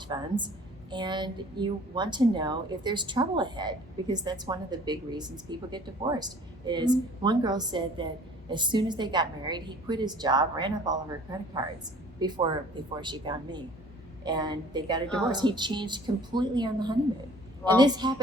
funds. And you want to know if there's trouble ahead, because that's one of the big reasons people get divorced. Is one girl said that as soon as they got married, he quit his job, ran up all of her credit cards before she found me, and they got a divorce. He changed completely on the honeymoon. Wow. And this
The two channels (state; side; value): normal; both; correlation 0.51